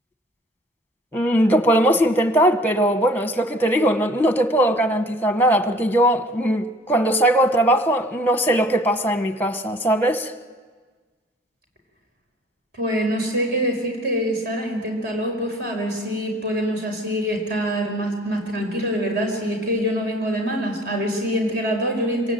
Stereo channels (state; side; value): normal; both; correlation 0.52